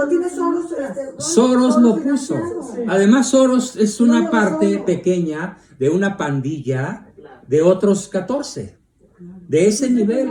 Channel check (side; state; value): both; identical; correlation 1.00